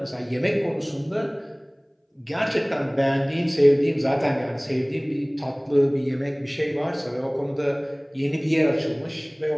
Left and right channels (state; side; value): identical; both; correlation 1.00